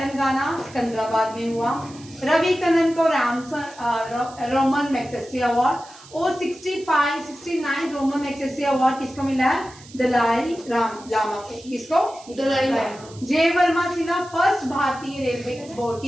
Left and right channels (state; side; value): noise; right; hiss, 21 dB below the sound